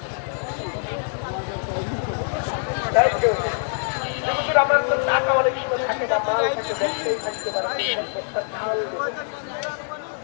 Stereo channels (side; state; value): right; silent; 62 dB below the other